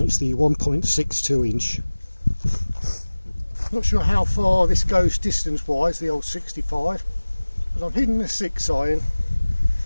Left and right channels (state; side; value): inverted; both; correlation -1.00